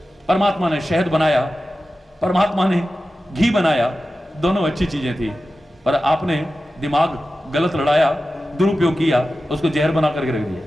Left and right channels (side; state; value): both; normal; correlation 0.94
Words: परमात्मा ने शहद बनाया, परमात्मा ने घी बनाया, दोनों अच्छी चीजें थी, पर आपने दिमाग गलत लड़ाया, दुरुपयोग किया, उसको जहर बना करके रख दिया।